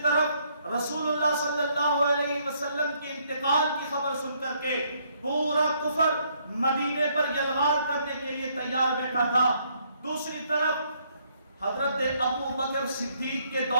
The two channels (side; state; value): both; inverted; correlation -0.69